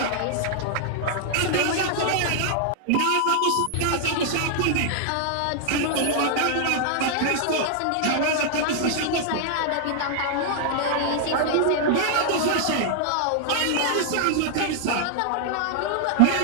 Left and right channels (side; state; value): both; different; correlation 0.00